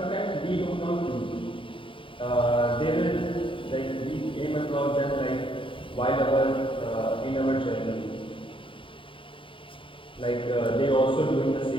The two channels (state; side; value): late; right; 0.25 ms